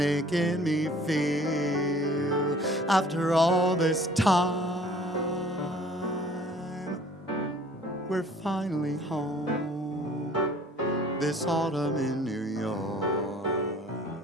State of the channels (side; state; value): both; normal; correlation 0.52